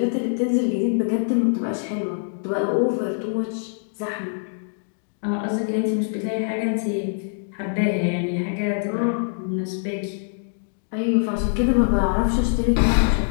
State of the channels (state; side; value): silent; right; digital silence